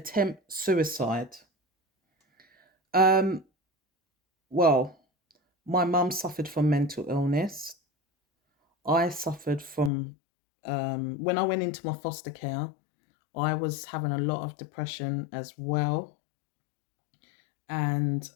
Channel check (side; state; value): right; drops out; at 9.9 s